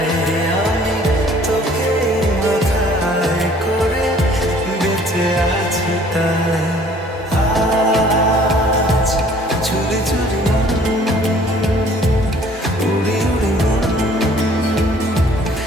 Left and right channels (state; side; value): normal; both; correlation 0.55